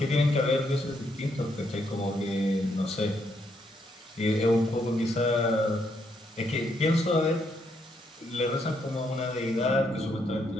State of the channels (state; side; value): normal; both; correlation 0.75